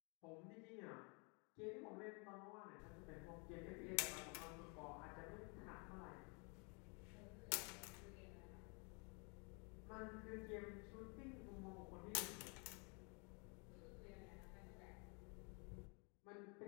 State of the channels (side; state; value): right; quieter; 34.4 dB